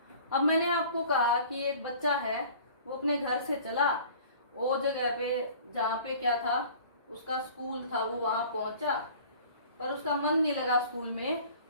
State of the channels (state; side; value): inverted; both; correlation -0.46